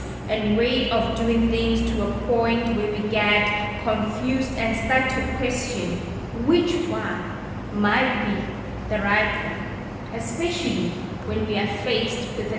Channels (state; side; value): identical; both; correlation 1.00